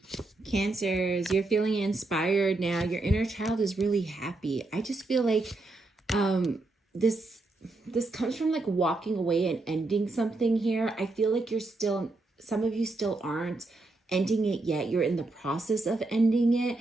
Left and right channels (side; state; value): left; quieter; 3.1 dB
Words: Cancers, you're feeling inspired now. Your inner child is really happy. I just feel like this comes from like walking away and ending something here. I feel like you're still, some of you still aren't ending it yet. You're in the process of ending it.